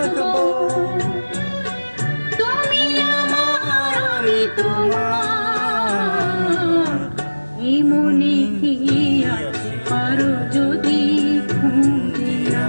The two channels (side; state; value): both; inverted; correlation -1.00